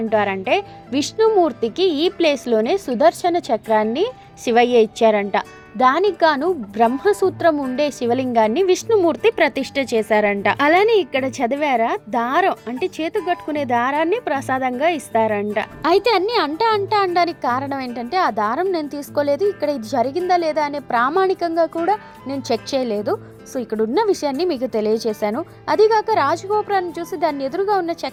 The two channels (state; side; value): identical; both; correlation 1.00